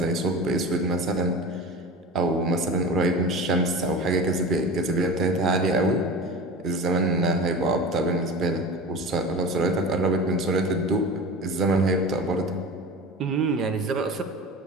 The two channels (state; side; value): normal; both; correlation 0.32